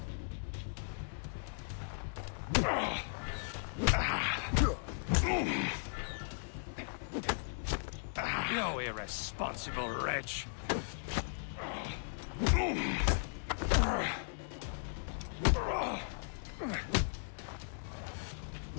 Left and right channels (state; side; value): silent; right; digital silence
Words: You irresponsible wretch!